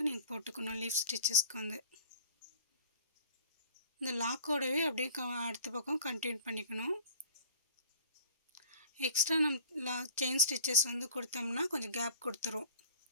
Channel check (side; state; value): both; inverted; correlation -0.47